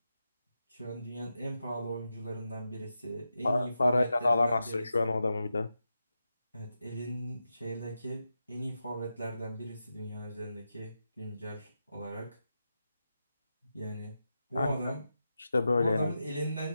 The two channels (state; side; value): inverted; both; correlation -0.89